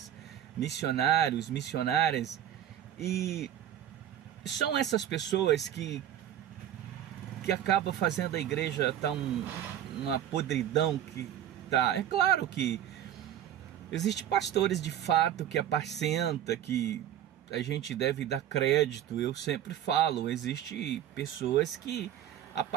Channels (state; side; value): quieter; left; 11.0 dB